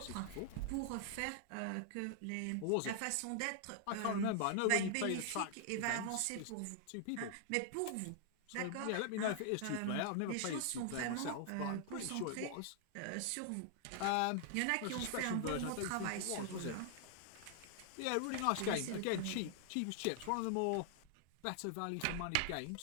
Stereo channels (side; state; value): both; different; correlation 0.00